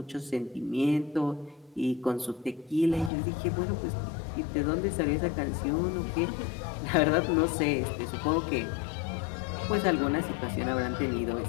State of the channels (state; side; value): drops out; right; at 3.1 s